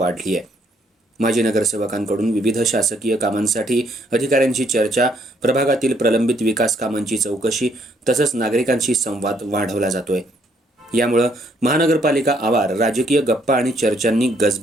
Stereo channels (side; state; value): both; normal; correlation 0.69